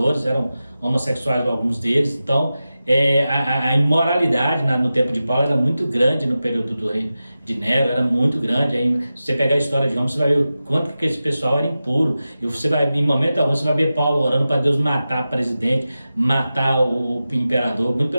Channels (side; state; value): both; inverted; correlation -0.93